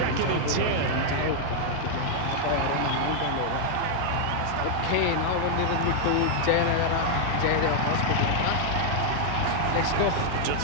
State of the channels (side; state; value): both; different; correlation -0.01